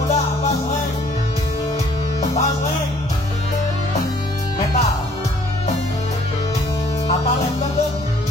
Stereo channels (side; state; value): both; normal; correlation 0.60